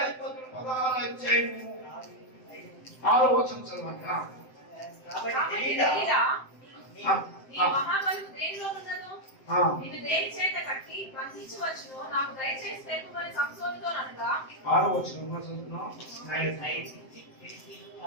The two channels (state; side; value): late; right; 7.7 ms